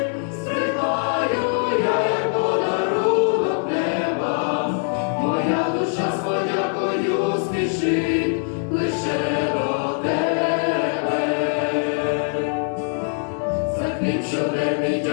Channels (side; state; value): right; silent; 56 dB below the other